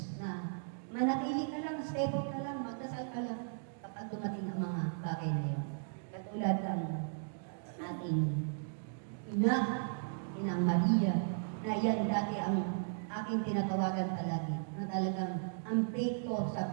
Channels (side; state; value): left; silent; digital silence